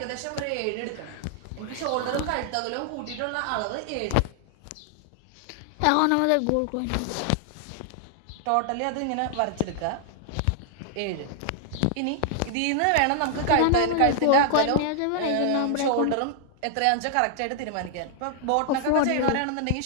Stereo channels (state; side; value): different; both; correlation -0.01